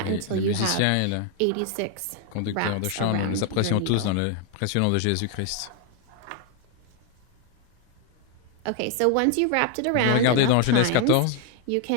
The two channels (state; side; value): different; both; correlation 0.01